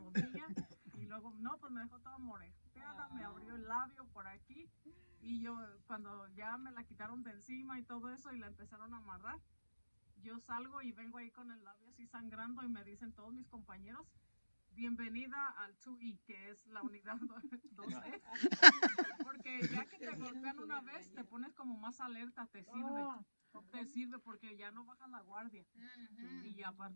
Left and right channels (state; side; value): inverted; both; correlation -1.00